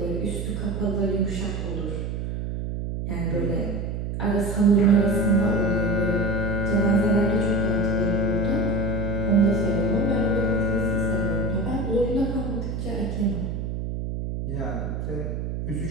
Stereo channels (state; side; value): noise; right; hum, 4 dB below the sound